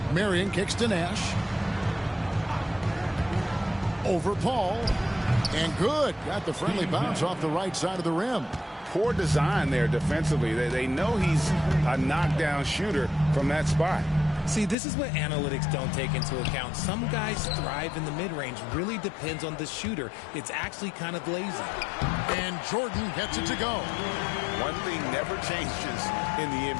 Marion kicks to Nash. Over Paul. And good. Got the friendly bounce off the right side of the rim. Poor design there defensively. They know he's a knockdown shooter from that spot. See, this is what analytics don't take into account. Some guys thrive in the mid-range. Really depends on the shooter. It's actually kind of lazy. And Jordan gets it to go. One thing never changes in the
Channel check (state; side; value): drops out; right; at 14.8 s